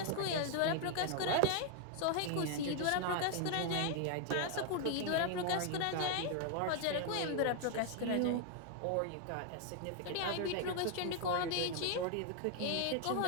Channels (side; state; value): both; different; correlation 0.00